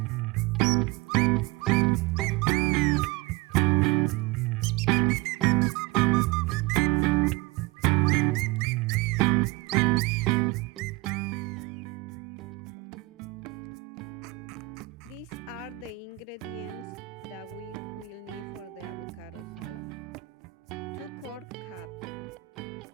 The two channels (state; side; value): quieter; left; 20.3 dB